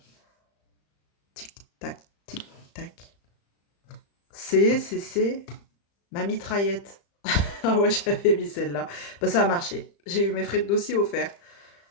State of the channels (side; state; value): right; late; 35 ms